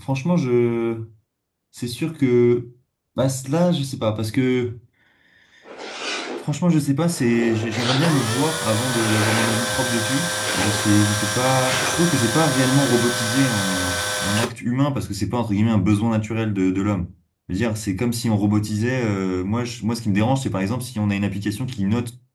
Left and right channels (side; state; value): both; identical; correlation 1.00